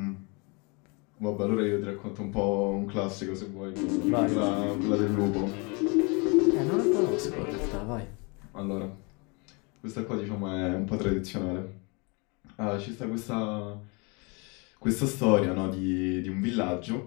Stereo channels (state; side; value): quieter; right; 30.6 dB